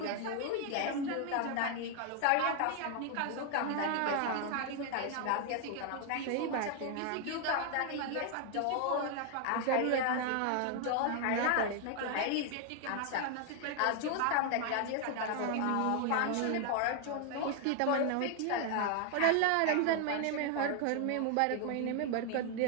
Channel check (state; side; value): different; both; correlation 0.00